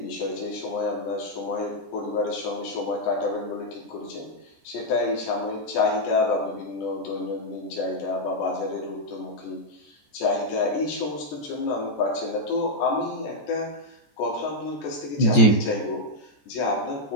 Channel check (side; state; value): right; late; 14 ms